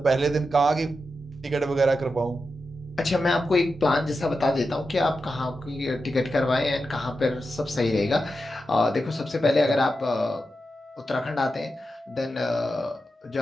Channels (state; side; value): normal; both; correlation 0.89